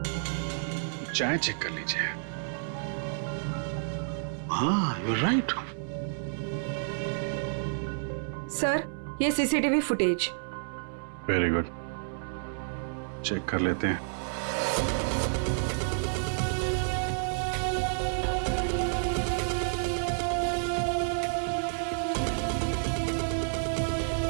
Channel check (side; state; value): left; silent; 58 dB below the other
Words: चाय चेक कर लीजिए। हाँ, यू राइट। सर, ये CCTV footage. Very good, check कर लेते हैं।